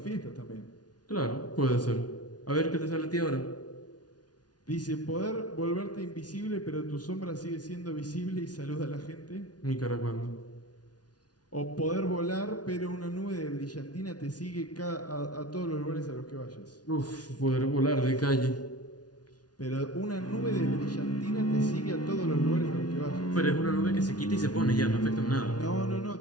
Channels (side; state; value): right; late; 0.69 ms